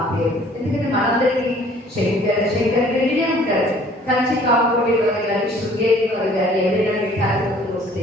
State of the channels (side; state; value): both; normal; correlation 0.55